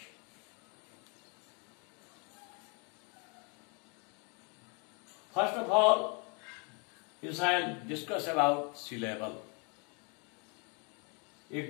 First of all, you shall discuss about syllable.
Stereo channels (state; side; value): quieter; right; 34.3 dB